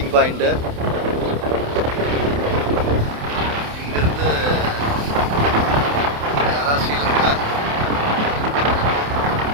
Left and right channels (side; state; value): left; late; 28 ms